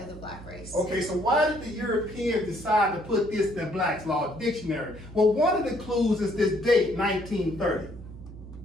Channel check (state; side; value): noise; right; hum, 15 dB below the sound